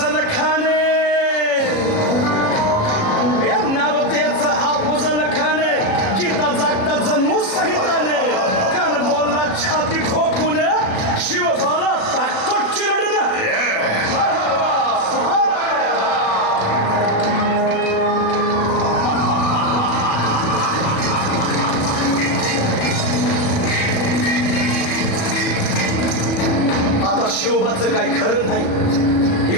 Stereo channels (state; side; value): late; right; 37 ms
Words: खान. या नवतेचं अफजल खान जिता जागता जणू सहिताने कान बोलला छाती ठोकून, शिवबाला टाकतो चिरडून.